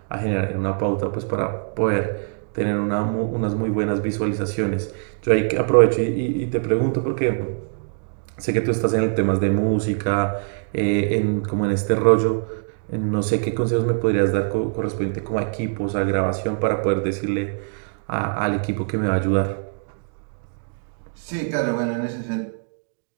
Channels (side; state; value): left; silent; digital silence